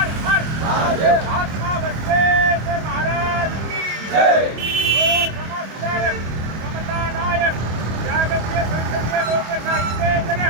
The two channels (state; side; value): late; left; 25 ms